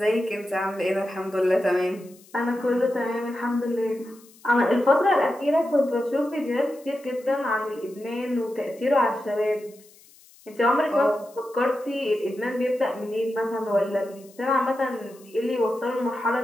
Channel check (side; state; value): left; noise; hiss, 26 dB below the sound